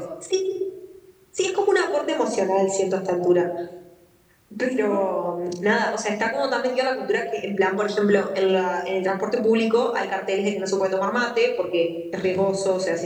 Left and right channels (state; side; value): identical; both; correlation 1.00